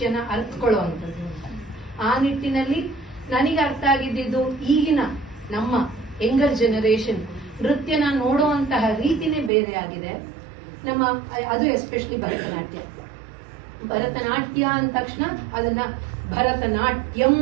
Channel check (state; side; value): drops out; left; at 9.5 s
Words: ಅರ್ಥಕೊಳ್ಳುವಂಥದ್ದು. ಆ ನಿಟ್ಟಿನಲ್ಲಿ ನನಗೆ ಅರ್ಥ ಆಗಿದ್ದು ಈಗಿನ ನಮ್ಮ ಯಂಗರ್ ಜನರೇಷನ್ ನೃತ್ಯನ ನೋಡುವಂತಹ ರೀತಿನೇ ಬೇರೆ ಆಗಿದೆ. ನಮ್ಮ ಅದು ಎಸ್ಪೆಷಲಿ ಭರತನಾಟ್ಯ ಅಂದ ತಕ್ಷಣ ಅದನ್ನ ಭರತನಾಟ್ಯಂ